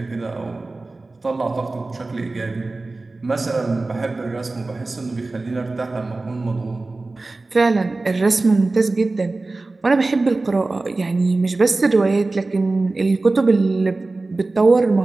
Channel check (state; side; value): quieter; left; 3.3 dB